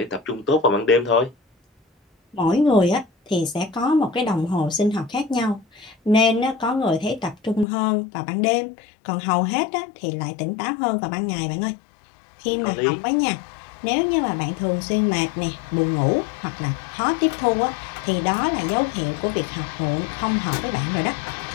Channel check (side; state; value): right; drops out; at 7.7 s